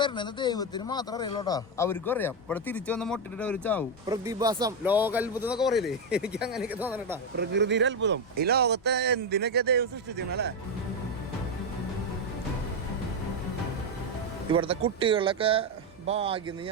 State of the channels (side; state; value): both; normal; correlation 0.07